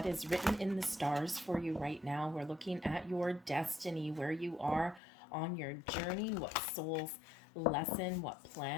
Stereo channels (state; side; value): drops out; right; at 5.0 s